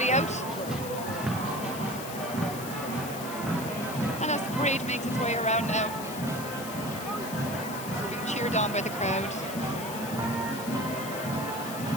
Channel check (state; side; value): noise; left; hiss, 11 dB below the sound